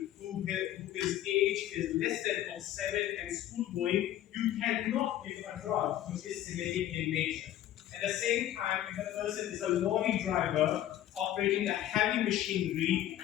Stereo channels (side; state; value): right; quieter; 12.5 dB